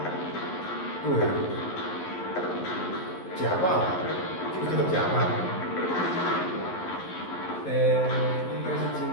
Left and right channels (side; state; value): right; late; 11 ms